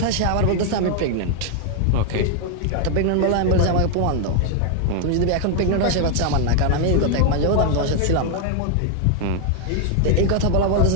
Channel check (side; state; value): both; different; correlation 0.00